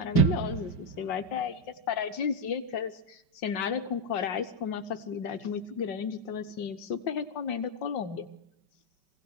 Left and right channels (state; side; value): late; right; 5.2 ms